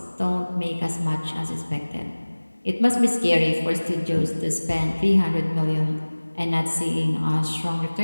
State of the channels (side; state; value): both; inverted; correlation -1.00